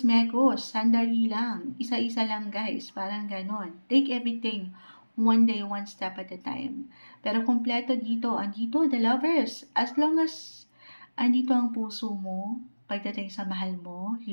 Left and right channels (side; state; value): both; inverted; correlation -1.00